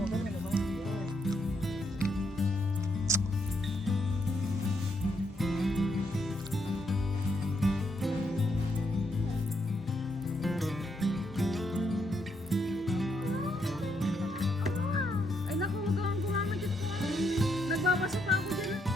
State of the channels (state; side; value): normal; both; correlation 0.77